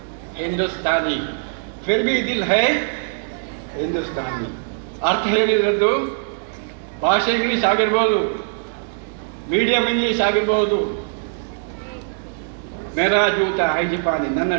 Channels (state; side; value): silent; left; digital silence